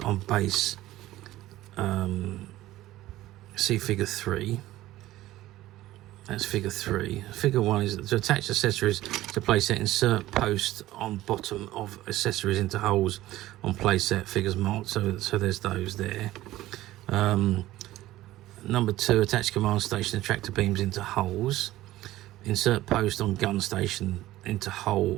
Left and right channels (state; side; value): quieter; left; 15.8 dB